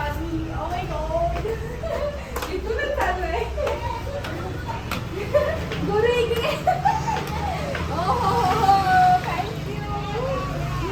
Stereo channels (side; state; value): both; identical; correlation 1.00